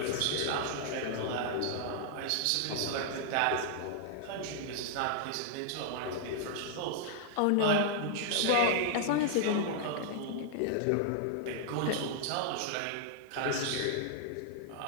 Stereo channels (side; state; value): both; different; correlation -0.01